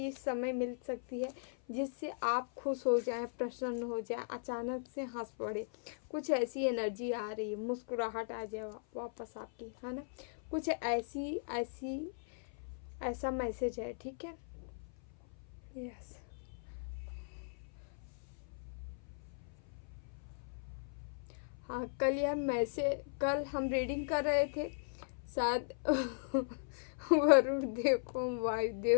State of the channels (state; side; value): silent; right; 52 dB below the other